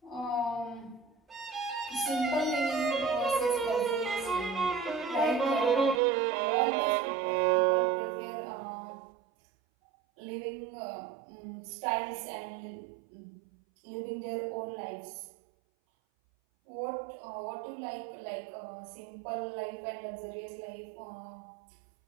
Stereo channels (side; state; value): left; drops out; at 6.0 s